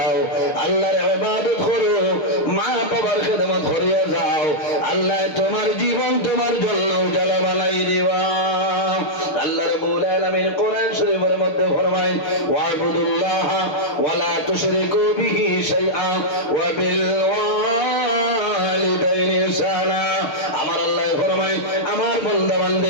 আল্লাহর ইবাদত করো, মা বাবার খেদমত করিয়া যাও, আল্লাহ তোমার জীবন তোমার জন্য উজালা বানাই দিবা। আল্লাহ রাব্বুল আলামিন কোরআন শরীফের মধ্যে ফরমায়, ওয়াবুদুল্লাহ ওয়ালা তুশরিকু বিহি শাইআ ওয়া বিল ওয়ালিদাইনি ইহসানা। আমার আল্লাহ ফরমায়, আমার বান্দা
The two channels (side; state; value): right; late; 6.5 ms